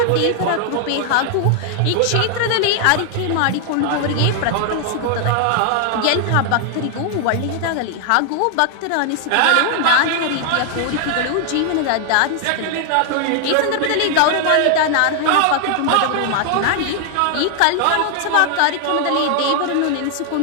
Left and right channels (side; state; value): both; different; correlation 0.00